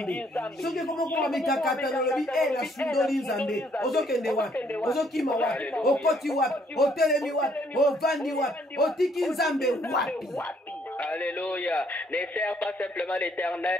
soki komokoma mikakata nalobi nasundoli nzambe ozokende wapi ozokima wapi okoti wapi otelemi wapi ovandi wapi otiki nzambe wapi. Alléluia. Ne sers pas simplement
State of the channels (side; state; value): both; normal; correlation 0.67